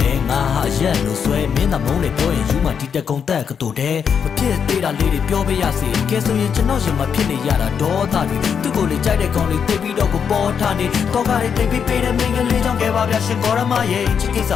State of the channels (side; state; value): right; quieter; 7.1 dB